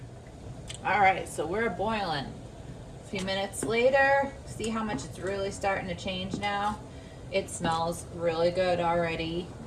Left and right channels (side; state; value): both; identical; correlation 1.00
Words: All right, so we're boiling. A few minutes later, see how much it's really starting to change now. It smells really good already,